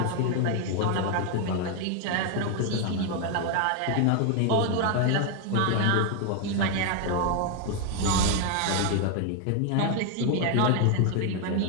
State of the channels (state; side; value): different; both; correlation 0.01